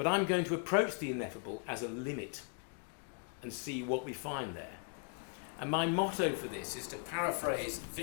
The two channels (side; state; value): right; quieter; 39.3 dB